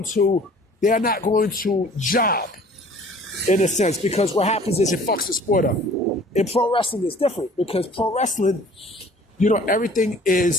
to job, in a sense, because what happens is it fucks the sport up. In pro wrestling, it's different, because pro wrestling, you know, everything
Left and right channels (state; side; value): normal; both; correlation 0.51